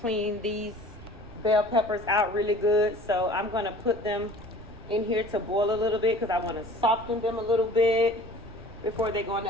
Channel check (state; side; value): noise; right; rumble, 18 dB below the sound